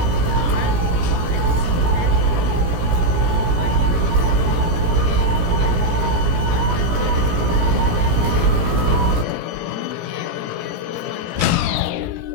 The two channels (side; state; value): left; late; 17 ms